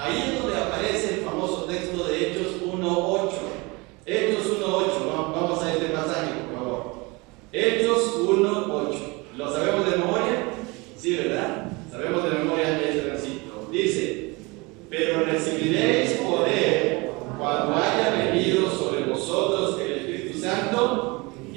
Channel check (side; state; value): left; quieter; 25.7 dB